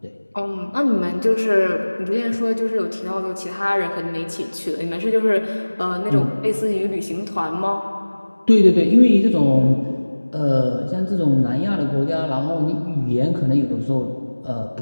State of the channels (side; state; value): both; inverted; correlation -1.00